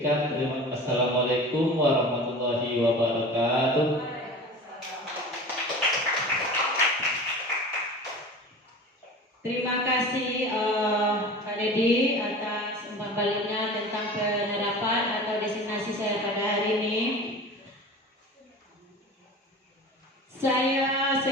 Assalamualaikum warahmatullahi wabarakatuh. Terima kasih Pak Dedi atas umpan baliknya tentang penerapan atau destinasi saya pada hari ini. Saya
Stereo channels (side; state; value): both; normal; correlation 0.36